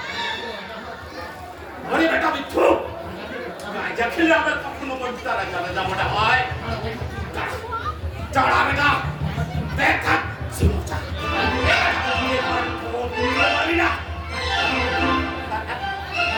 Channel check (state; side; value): identical; both; correlation 1.00